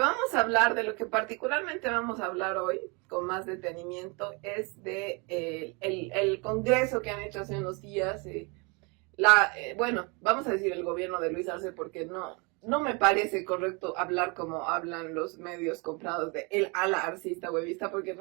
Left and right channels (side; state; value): left; quieter; 30.6 dB